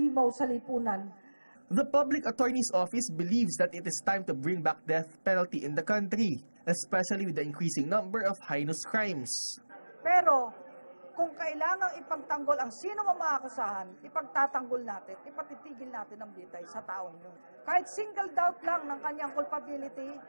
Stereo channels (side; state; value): both; inverted; correlation -1.00